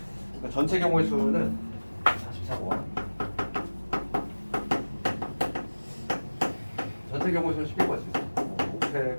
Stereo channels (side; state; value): both; inverted; correlation -1.00